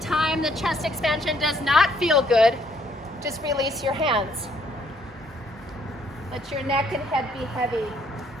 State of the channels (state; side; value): normal; both; correlation 0.67